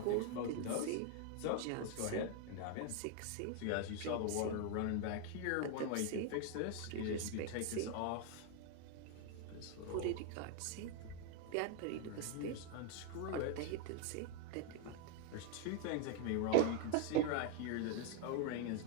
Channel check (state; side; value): different; both; correlation 0.01